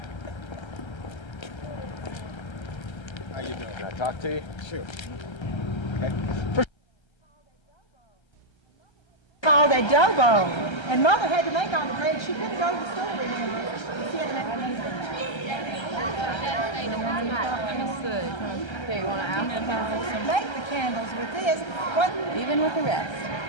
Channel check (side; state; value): right; late; 1.3 ms